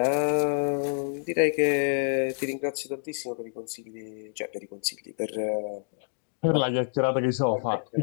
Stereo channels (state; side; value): silent; right; digital silence